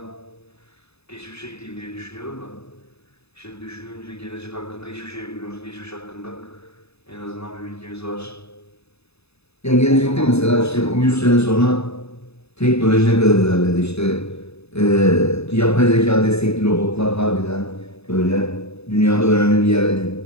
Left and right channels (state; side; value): late; right; 0.79 ms